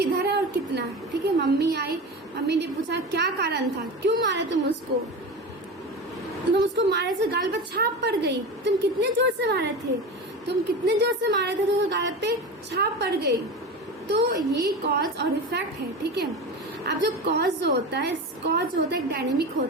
है और कितना, ठीक है। मम्मी आई, मम्मी ने पूछा क्या कारण था, क्यों मारे तुम उसको। तुम उसको मारे से गाल पर छाप पड़ गई। तुम कितने जोर से मारे थे, तुम कितने जोर से मारे थे तो गाल पे छाप पड़ गई। तो ये कॉज और इफेक्ट है, ठीक है। अब जो कॉज जो होता है, कॉज होता है डायनेमिक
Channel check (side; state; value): both; normal; correlation 0.27